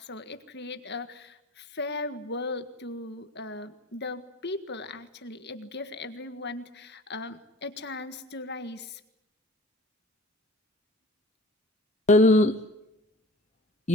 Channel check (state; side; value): normal; both; correlation 0.43